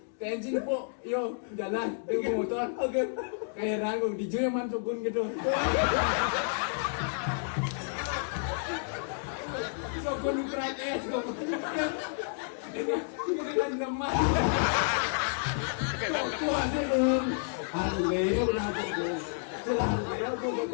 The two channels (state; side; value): silent; right; digital silence